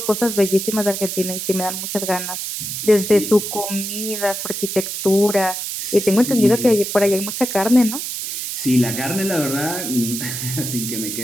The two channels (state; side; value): noise; right; hiss, 5 dB below the sound